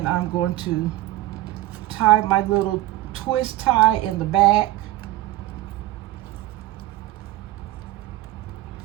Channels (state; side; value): quieter; left; 16.4 dB